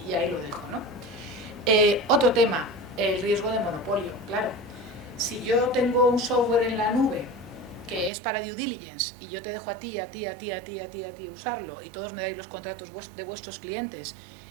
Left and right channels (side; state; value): left; drops out; at 8.1 s